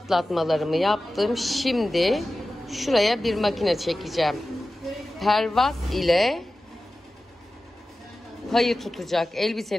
yaptım. Şimdi şuraya bir makine çekeceğim. Pervaz ile payı tutacak.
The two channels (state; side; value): normal; both; correlation 0.95